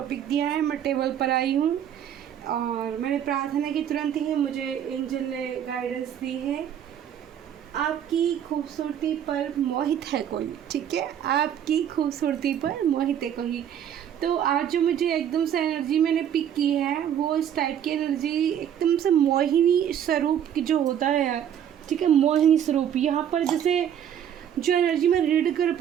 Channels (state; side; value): quieter; left; 9.6 dB